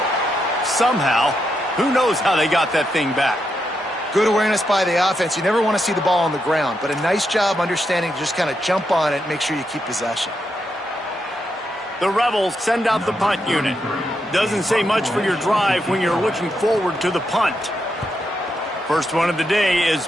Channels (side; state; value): both; normal; correlation 0.82